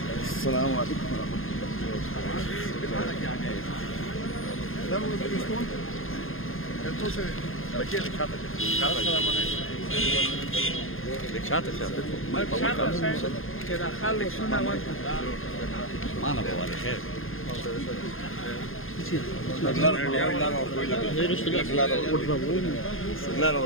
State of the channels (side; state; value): right; late; 0.60 ms